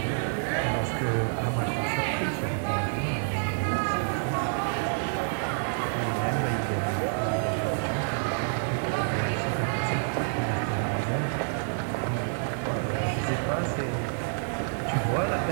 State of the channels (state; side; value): silent; left; digital silence